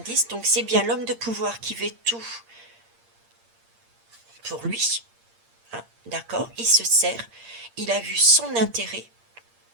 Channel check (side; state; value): left; late; 8.7 ms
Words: Donc, c'est bien l'homme de pouvoir qui veut tout pour lui. Hein, d'accord. Il se sert. Il a vu son intérêt.